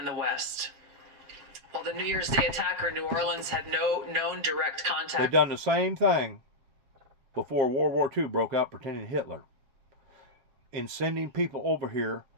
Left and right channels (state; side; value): late; left; 7.3 ms